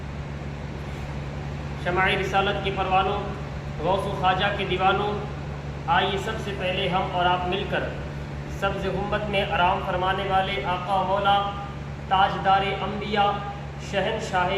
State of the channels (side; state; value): both; identical; correlation 1.00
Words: شمع رسالت کے پروانوں، غوث و خواجہ کے دیوانوں، آئیے سب سے پہلے ہم اور آپ مل کر سبز ہمت میں آرام فرمانے والے آقا مولا تاجدار انبیاء،